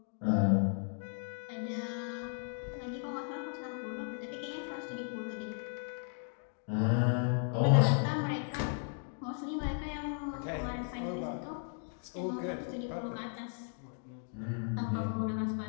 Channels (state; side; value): silent; right; 54 dB below the other